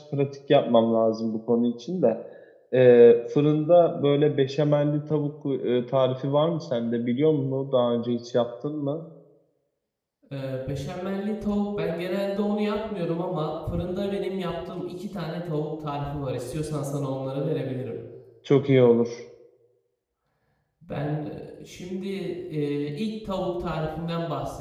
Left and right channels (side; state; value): both; identical; correlation 1.00